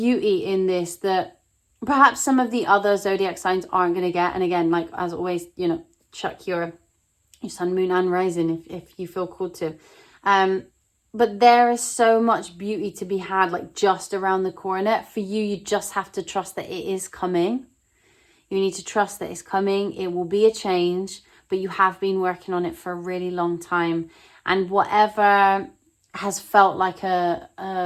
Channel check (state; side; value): identical; both; correlation 1.00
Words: in this that perhaps some of the other zodiac signs aren't going to get. And again, like as always, you know, check your sun, moon and rising if you feel called to. But there is so much beauty to be had, like just around the corner. For you, you just have to trust that it is coming. You need to trust that it's coming. It will be a change, but you have been working on it for a really long time. And whatever has felt like a